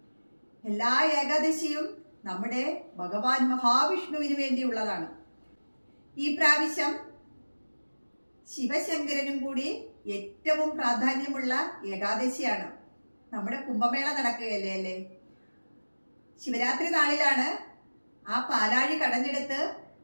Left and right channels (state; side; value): inverted; both; correlation -1.00